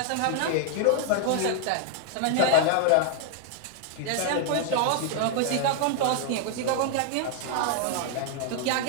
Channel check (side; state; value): both; different; correlation 0.00